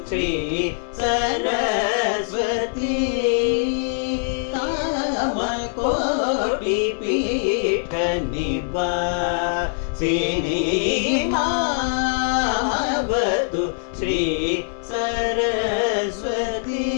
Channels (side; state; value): right; silent; digital silence